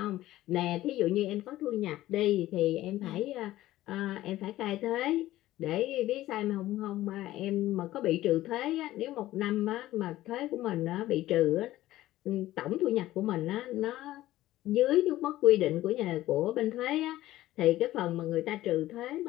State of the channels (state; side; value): quieter; right; 15.4 dB